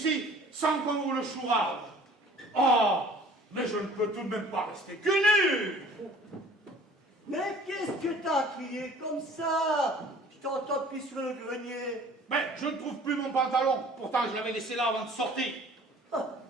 sans qu'on vous le chourave. Ah, mais je ne peux tout de même pas rester que nu. Mais qu'est-ce que t'as crié comme ça? Je t'entends depuis sur le grenier. Mais je ne trouve plus mon pantalon, pourtant je l'avais laissé là avant de sortir.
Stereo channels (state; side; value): normal; both; correlation 0.50